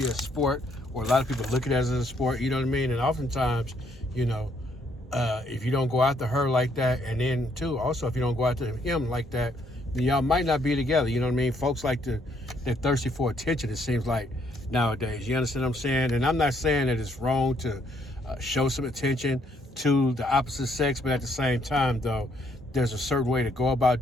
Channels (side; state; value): both; normal; correlation 0.70